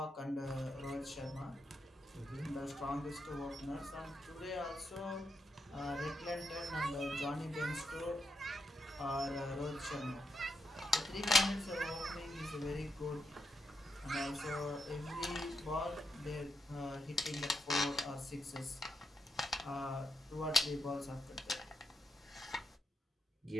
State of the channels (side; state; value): both; normal; correlation 0.82